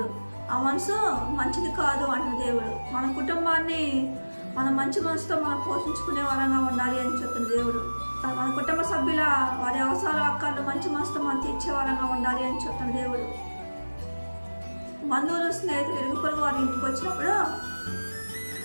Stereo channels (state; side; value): inverted; both; correlation -1.00